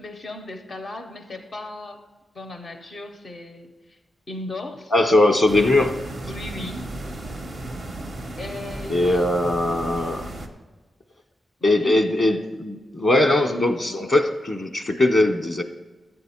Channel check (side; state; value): both; normal; correlation 0.85